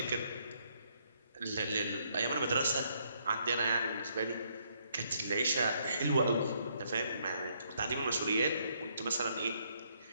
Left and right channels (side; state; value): both; inverted; correlation -0.71